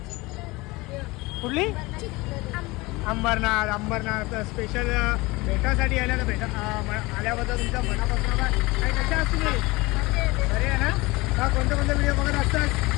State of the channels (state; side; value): quieter; right; 22.6 dB